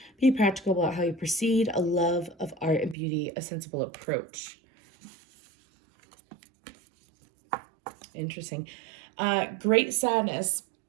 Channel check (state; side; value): drops out; left; at 3.0 s